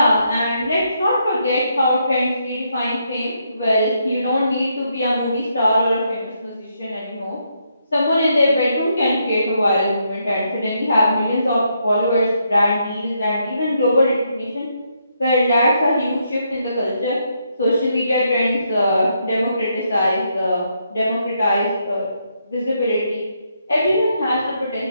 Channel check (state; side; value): inverted; both; correlation -0.77